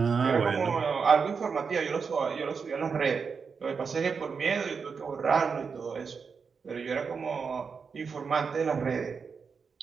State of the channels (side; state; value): left; quieter; 5.6 dB